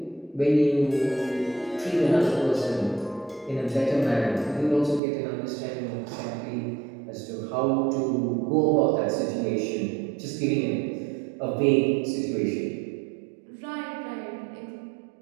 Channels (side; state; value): left; drops out; at 5.0 s